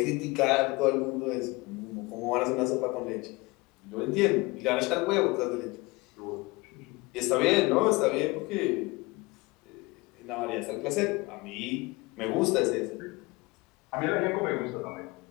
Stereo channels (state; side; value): quieter; right; 23.7 dB